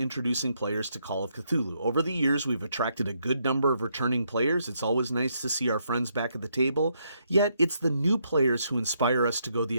players to Call of Cthulhu. Over the years, we've attracted a good number of returning players. It's always nice to see our friends back at the table, yet it's the new players who inspire us to go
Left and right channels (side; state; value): both; inverted; correlation -0.75